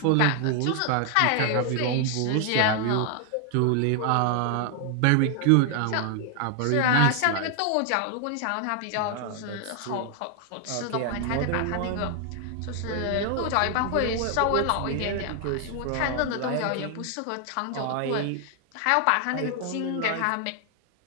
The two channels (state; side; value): different; both; correlation 0.00